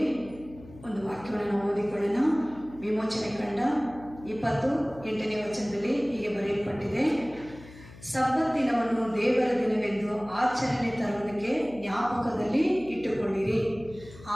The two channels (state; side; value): noise; left; hum, 19 dB below the sound